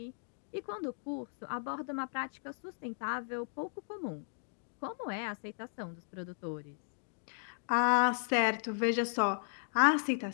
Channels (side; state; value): right; silent; digital silence